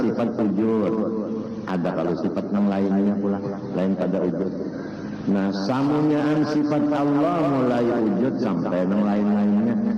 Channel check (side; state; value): both; identical; correlation 1.00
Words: wujud. Ada kalau sifat yang lainnya pula, lain pada wujud. Nah, samunyaan sifat Allah mulai wujud sampai yang lain-lainnya.